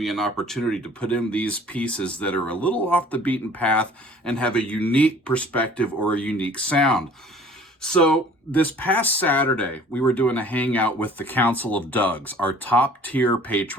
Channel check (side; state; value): both; normal; correlation 0.51